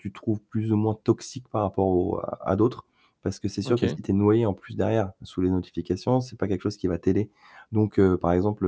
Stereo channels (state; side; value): identical; both; correlation 1.00